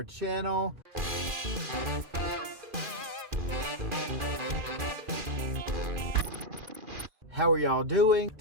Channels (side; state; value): left; late; 2.4 ms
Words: channel. How are y'all doing?